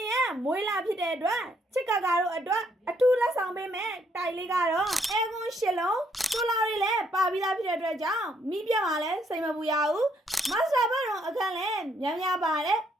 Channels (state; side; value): normal; both; correlation 0.71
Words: ရဲ့မွေးလာဖြစ်တဲ့အတွက်ချစ်ကကာတို့အတွက်အထူးလက်ဆောင်ပေးမယ်တိုက်လေးကတော့အဲကွန်း၈လုံးဆိုလာတွေလည်းပါပြီးသားဖြစ်တဲ့အတွက်ကြောင့်မိပြတ်မှာလည်းစိတ်မပူရဘူးမတ်စတာဘတ်တော်အခန်းလည်းများများပါတယ်